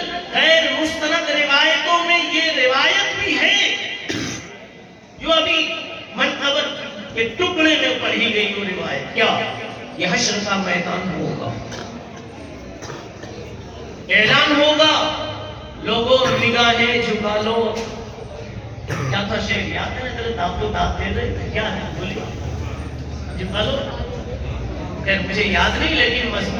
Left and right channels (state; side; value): identical; both; correlation 1.00